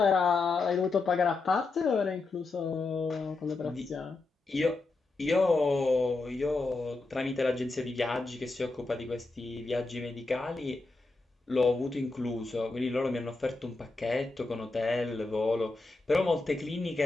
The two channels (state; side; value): quieter; right; 3.5 dB